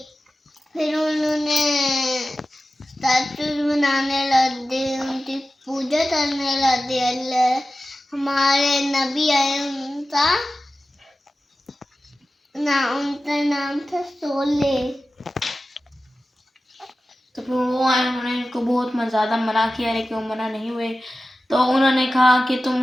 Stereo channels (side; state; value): both; normal; correlation 0.95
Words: फिर उन्होंने स्टैचूज बनाने लगे, उनकी पूजा करने लगे। हमारे नबी आए, उनका नाम था सोले। तो फिर वो आए, उन्होंने इनको बहुत ज़्यादा मना किया लेकिन वो मना नहीं हुए। तो उन्होंने कहा कि